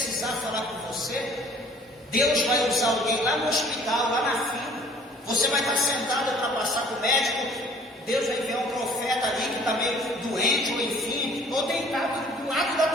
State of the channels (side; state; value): both; normal; correlation 0.53